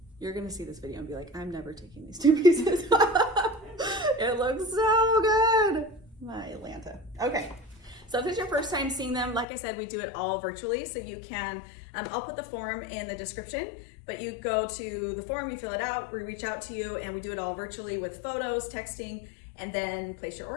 You're gonna see this video and be like, I'm never taking these two pieces off. It looks so good. My Atlanta. Okay. So if it's your first time seeing them, like I said, we do it all virtually. So you can, I'll put the form in the description, but you go to the form, you fill it out, we reach out to you, and we do it all virtually with photos, texting, and then place your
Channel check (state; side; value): drops out; right; at 9.5 s